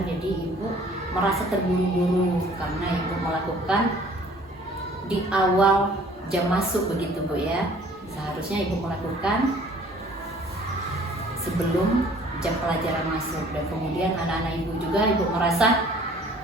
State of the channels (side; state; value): both; normal; correlation 0.54